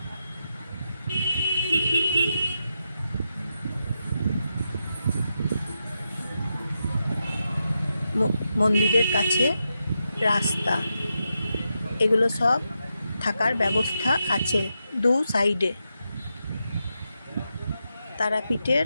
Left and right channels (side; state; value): both; inverted; correlation -0.86